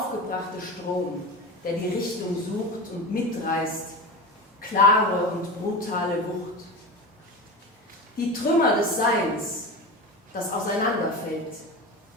Strom, der die Richtung sucht und mitreißt, klare und brutale Wucht. Die Trümmer des Seins, das auseinanderfällt.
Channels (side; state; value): both; normal; correlation 0.26